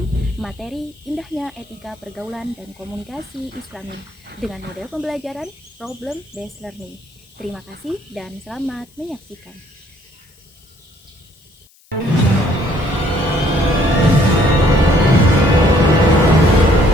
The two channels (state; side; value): noise; left; hiss, 30 dB below the sound